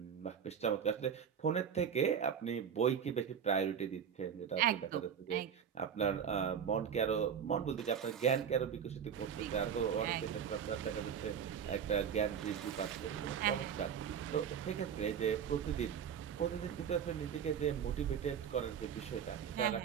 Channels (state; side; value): quieter; left; 7.9 dB